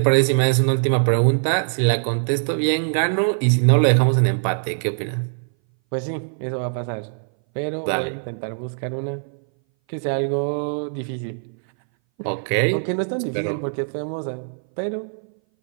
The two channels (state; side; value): silent; left; 60 dB below the other